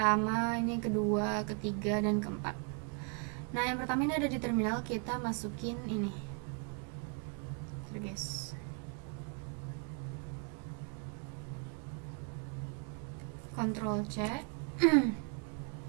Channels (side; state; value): left; quieter; 40.0 dB